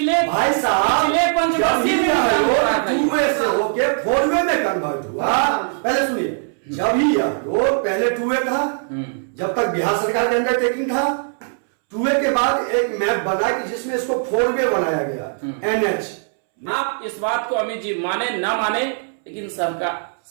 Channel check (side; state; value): left; silent; 66 dB below the other